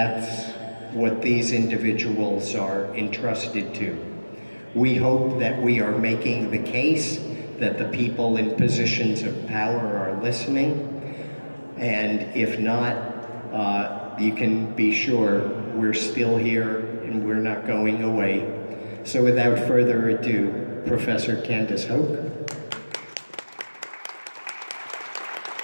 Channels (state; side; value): inverted; both; correlation -1.00